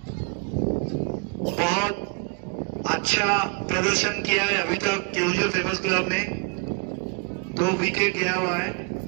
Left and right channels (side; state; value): left; quieter; 32.5 dB